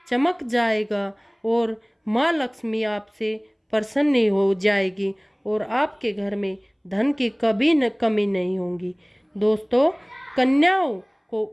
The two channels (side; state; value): both; identical; correlation 1.00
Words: चमक जाएगा और माँ लक्ष्मी आपसे प्रसन्न हो जाएगी और आपके घर में धन की कभी न कमी नहीं होगी। दोस्तों, कन्याओं को